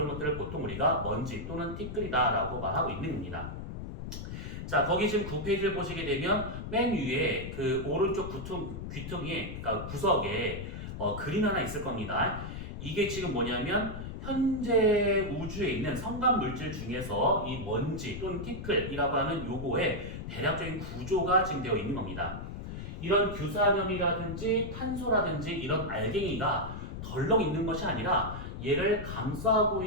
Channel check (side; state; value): left; noise; rumble, 8 dB below the sound